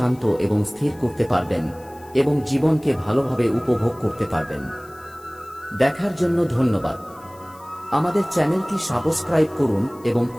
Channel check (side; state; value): left; noise; hiss, 26 dB below the sound